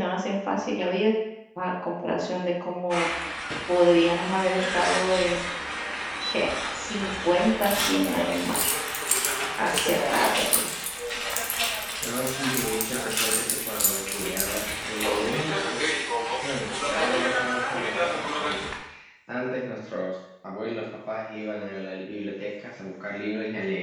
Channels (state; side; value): identical; both; correlation 1.00